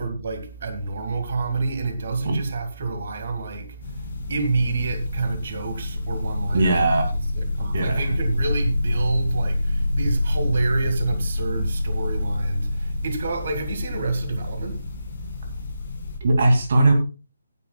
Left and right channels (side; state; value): both; inverted; correlation -0.88